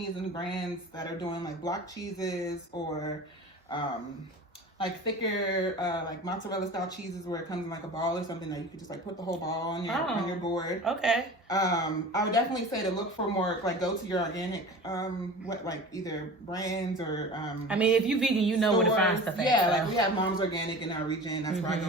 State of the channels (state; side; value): normal; both; correlation 0.37